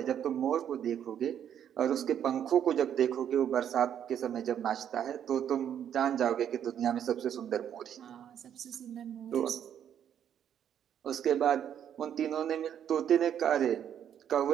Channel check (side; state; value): left; quieter; 9.4 dB